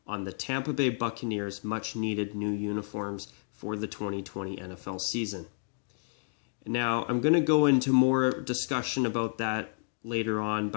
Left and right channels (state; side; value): silent; right; digital silence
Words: on the Tampa Bay Buccaneers' much-needed new uniforms for the 2020 NFL season. Now, I'm going to go into more discussion about that later on,